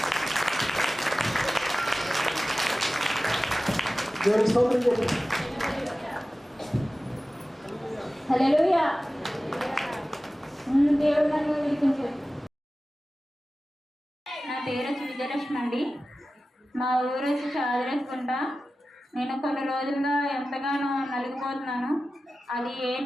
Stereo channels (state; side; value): normal; both; correlation 0.95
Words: దేవునికి స్తోత్రం చెప్పండి. హల్లెలూయా. దేవుడు నన్ను విడిపించాడు. నా పేరు వచ్చి విజయలక్ష్మి అండి. మా ఊరు వచ్చి చాదరేసుకుంట. నేను కొన్ని రోజులుగా ఎంతగానో నలిగిపోతున్నాను. అది